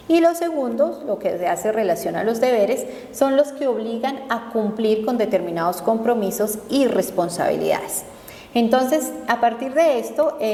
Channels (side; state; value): both; identical; correlation 1.00